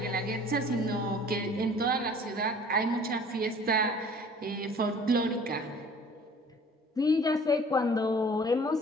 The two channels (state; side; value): normal; both; correlation 0.50